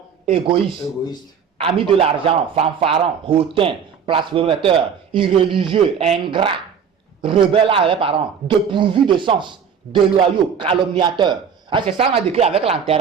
égoïstes. Amis de l'argent, fanfarons, hautains, blasphémateurs, irréligieux, ingrats, rebelles à leurs parents, dépourvus de sens, déloyaux, calomniateurs. C'est ça qu'on a décrit avec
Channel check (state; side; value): quieter; left; 7.1 dB